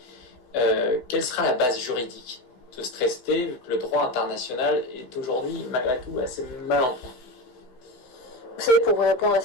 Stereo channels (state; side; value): late; right; 16 ms